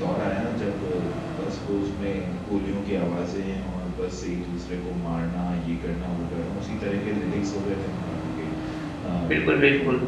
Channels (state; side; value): identical; both; correlation 1.00